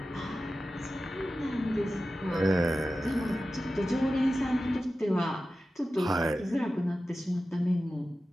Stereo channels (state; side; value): normal; both; correlation 0.94